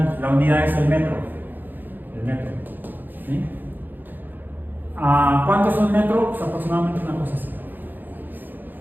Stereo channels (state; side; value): late; left; 0.088 ms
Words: la unidad es el metro. El metro. ¿Sí? ¿Cuánto es un metro? Pues aproximadamente una cosa así.